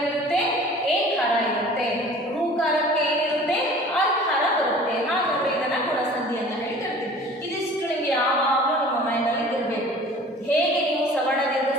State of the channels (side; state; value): both; normal; correlation 0.46